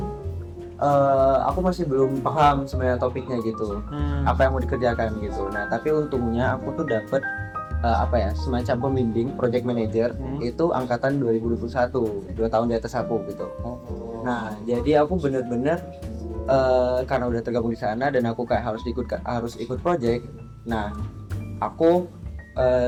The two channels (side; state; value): both; identical; correlation 1.00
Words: aku masih belum paham sebenarnya topiknya gitu, apa yang mau dikerjakan gitu. Nah, tapi untungnya aku tuh dapet semacam pembimbing project manager itu angkatan 2021, 2 tahun di atas aku gitu. Nah, jadi aku bener-bener karena udah tergabung di sana dan aku kayak harus ikut project. Nah, aku